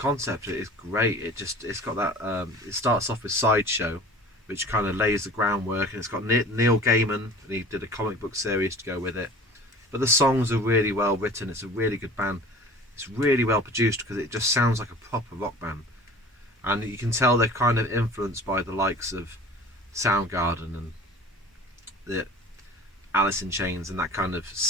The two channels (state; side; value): normal; both; correlation 0.42